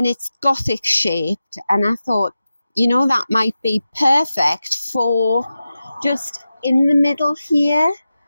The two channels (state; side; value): inverted; both; correlation -0.93